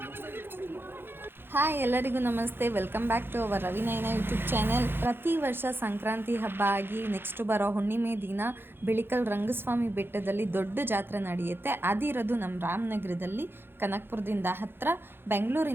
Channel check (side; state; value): left; late; 0.10 ms